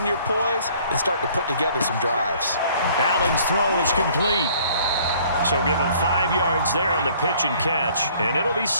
your poise and start to put together some drives. Allen's throw is complete. So give him 5 yards there on the pitch and catch, and it'll be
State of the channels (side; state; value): both; inverted; correlation -0.57